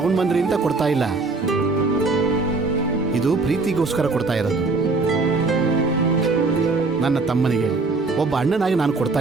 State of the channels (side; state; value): left; quieter; 3.8 dB